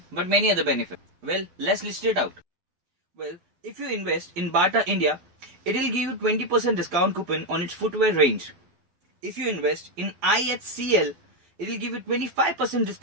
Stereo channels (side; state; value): left; late; 12 ms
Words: but many other benefits. Well, let's list it out. Well, if you invest in Bata India, it will give you 20% discount coupon on its footwear range. If you invest in IHCL, it will give you 25%